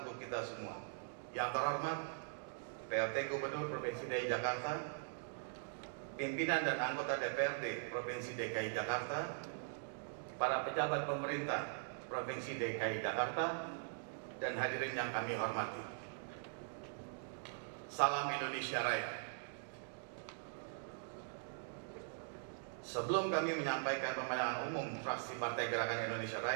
kita semua. Yang terhormat PLT Gubernur Provinsi DKI Jakarta, pimpinan dan anggota DPRD Provinsi DKI Jakarta, para pejabat pemerintah Provinsi DKI Jakarta, dan hadirin yang kami hormati. Salam Indonesia Raya. Sebelum kami menyampaikan pemandangan umum fraksi Partai Gerakan Indonesia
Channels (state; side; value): silent; left; digital silence